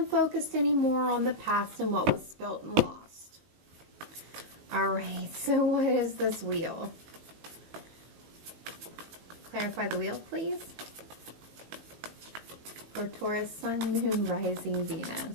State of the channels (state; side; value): late; left; 18 ms